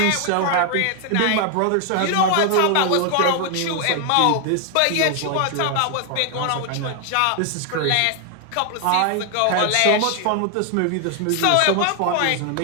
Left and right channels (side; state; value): both; different; correlation 0.00